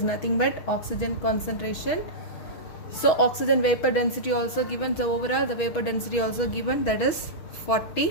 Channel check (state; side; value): late; right; 6.2 ms